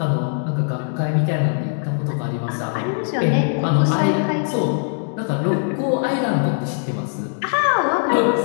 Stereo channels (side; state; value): right; silent; 58 dB below the other